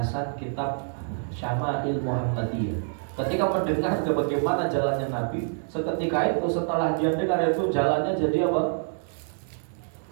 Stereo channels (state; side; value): silent; left; digital silence